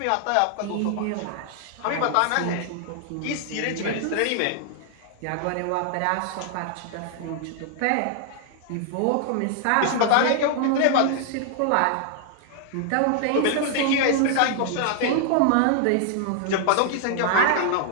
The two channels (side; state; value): both; different; correlation 0.00